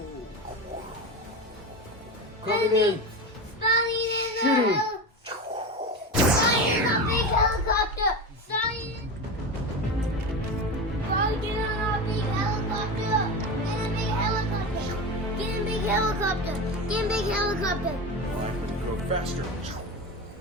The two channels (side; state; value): both; normal; correlation 0.23